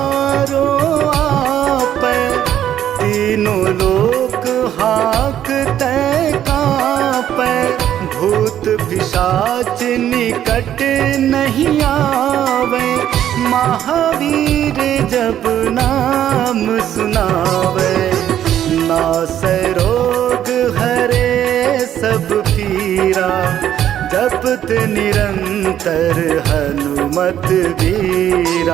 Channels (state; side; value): quieter; left; 10.9 dB